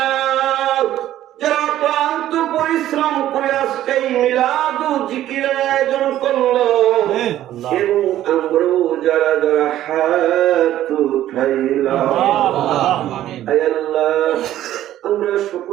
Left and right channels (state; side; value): quieter; left; 13.0 dB